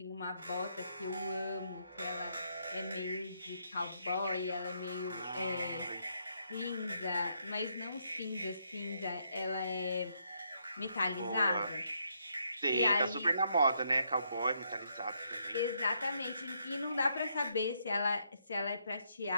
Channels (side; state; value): both; inverted; correlation -0.75